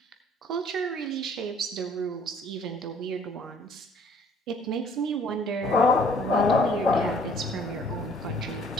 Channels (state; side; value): normal; both; correlation 0.57